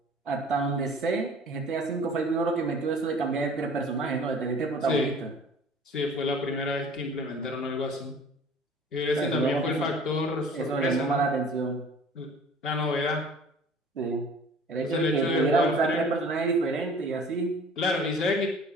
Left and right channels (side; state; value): both; normal; correlation 0.48